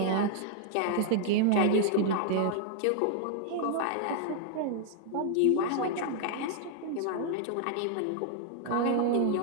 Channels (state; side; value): different; both; correlation 0.00